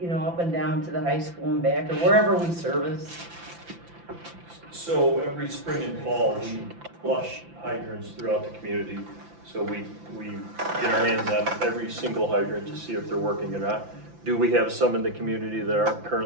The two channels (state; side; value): late; left; 5.9 ms